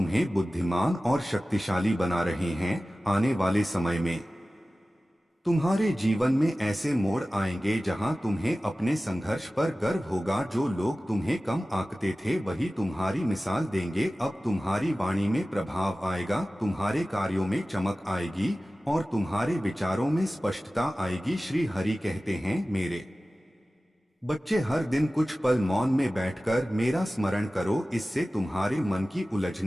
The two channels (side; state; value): both; normal; correlation 0.96